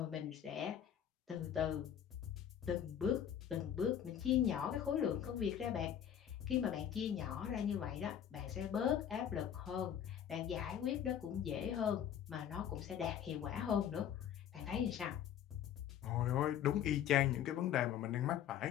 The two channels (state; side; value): quieter; right; 9.6 dB